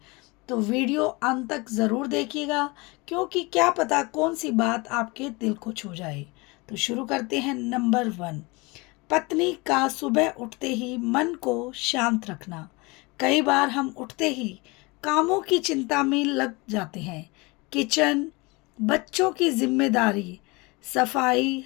तो वीडियो अंत तक ज़रूर देखिएगा, क्योंकि क्या पता कौन सी बात आपके दिल को छू जाए। तो शुरू करते हैं। नंबर 1, पत्नी का सुबह उठते ही मन को शांत रखना। कई बार हम उठते ही कामों की चिंता में लग जाते हैं। किचन, बच्चों की जिम्मेदारी, सफाई,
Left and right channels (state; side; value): quieter; right; 25.6 dB